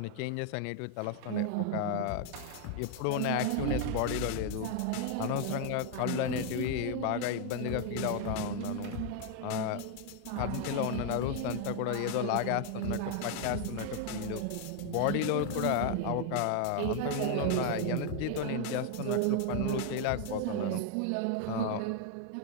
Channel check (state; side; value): different; both; correlation 0.00